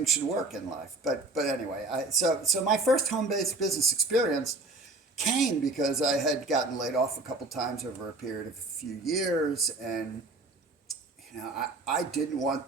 should work in life. But anyway, so my first home-based business experience came because I had gotten laid off a couple times over a period of a few years, and I didn't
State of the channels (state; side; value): quieter; left; 3.1 dB